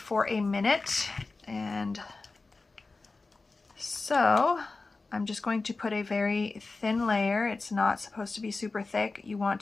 a minute, and so I'm just going to put a very thin layer. It's not supposed to be super thick. You want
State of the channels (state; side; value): quieter; right; 3.7 dB